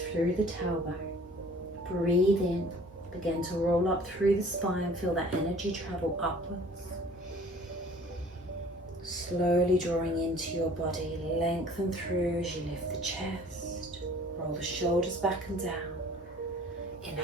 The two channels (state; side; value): normal; both; correlation 0.50